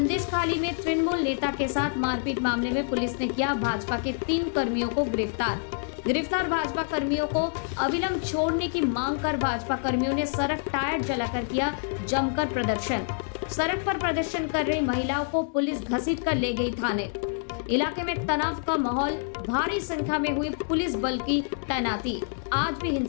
में तृणमूल नेता के साथ मारपीट मामले में पुलिस ने किया भाजपा के 3 कर्मियों को गिरफ्तार भाजपा कर्मियों को अविलंब छोड़ने की मांग कर भाजपा कर्मियों ने सड़क टायर जलाकर किया जमकर प्रदर्शन। सड़क पर प्रदर्शन कर रही महिलाओं को पुलिस घसीट कर ले गई थाने। इलाके में तनाव का माहौल, भारी संख्या में हुई पुलिस बल की तैनाती। आज भी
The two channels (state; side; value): silent; right; digital silence